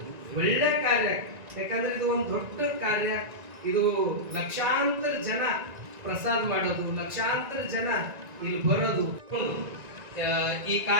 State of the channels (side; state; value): left; late; 1.9 ms